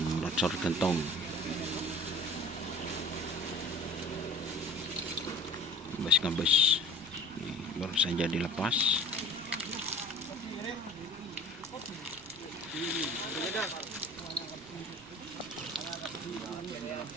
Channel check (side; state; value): both; normal; correlation 0.42